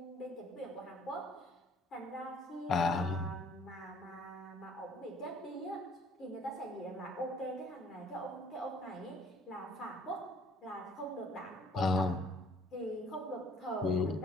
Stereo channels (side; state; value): both; normal; correlation 0.59